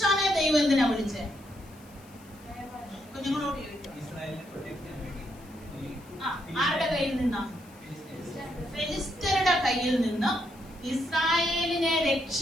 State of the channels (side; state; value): left; noise; hiss, 26 dB below the sound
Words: ദൈവം എന്തിനാ വിളിച്ചേ? കുഞ്ഞുങ്ങളോട് ചോദിക്കും. ആരുടെ കയ്യിൽ നിന്നാ? ഫെലിസ്ത്യരുടെ കയ്യിൽ നിന്ന് ഇസ്രായേലിനെ